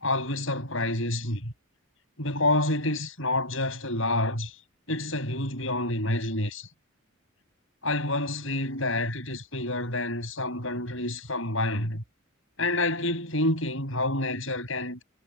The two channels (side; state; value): both; normal; correlation 0.02